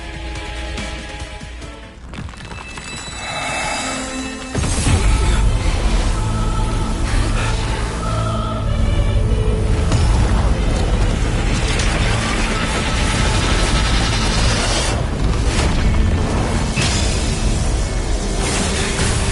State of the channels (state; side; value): identical; both; correlation 1.00